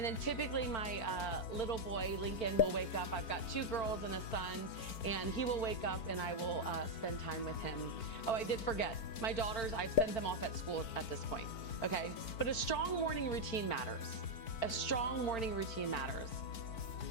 then typically my little boy, Lincoln, will wake up. I've got 2 girls and a son, and he will wake up and I will spend time with him. Oh, I did forget. My daughters, I've sent them off at school at this point, okay? But a strong morning routine matters. A strong morning routine matters.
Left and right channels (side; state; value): right; late; 4.4 ms